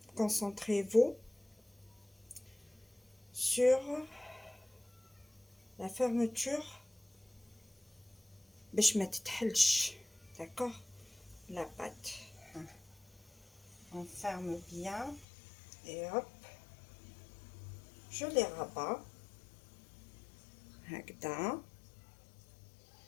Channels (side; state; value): right; drops out; at 15.2 s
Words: concentrez-vous sur la fermeture باش ما تتحلش. d'accord, la pâte, on ferme bien et hop, je les rabats هكذا,